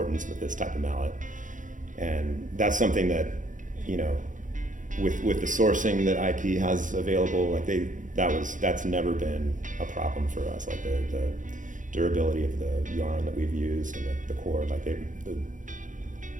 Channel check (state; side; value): late; left; 0.37 ms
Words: with this type of mallet. And that's something that, with the sourcing that IP has available, that's never been a problem for us. Like the durability of the yarn that we've used and the cord,